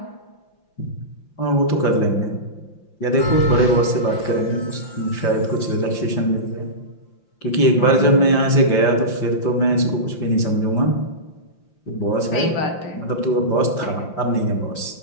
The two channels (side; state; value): right; late; 5.8 ms